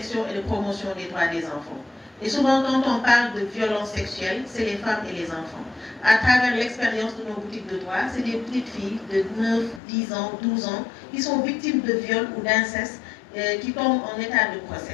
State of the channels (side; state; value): right; drops out; at 9.8 s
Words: et de promotion des droits des enfants. Et souvent, quand on parle de violence sexuelle, c'est les femmes et les enfants. À travers l'expérience de nos boutiques de droit, c'est des petites filles de 9, 10 ans, 12 ans qui sont victimes de viol ou d'inceste, qui tombent en état de